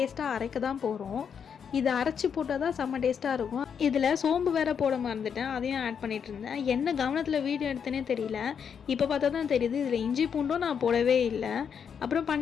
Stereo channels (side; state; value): right; quieter; 7.2 dB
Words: அரைக்க தான் போகிறோம். இதை அரைச்சி போட்டால் தான் செம்ம டேஸ்ட்டாக இருக்கும். இதில் சோம்பு வேறு போட மறந்துட்டேன், அதையும் ஆட் பண்ணிகிட்டு இருந்தேன். என்ன கவனத்தில் வீடியோ எடுத்தேனே தெரியல. இப்போ பார்த்தா தான் தெரியுது இதில் இஞ்சி பூண்டும் நான் போடவே இல்லை. அப்புறம்